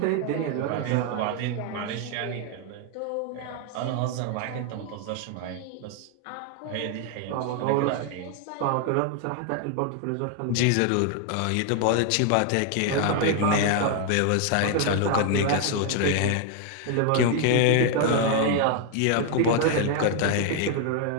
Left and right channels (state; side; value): different; both; correlation 0.00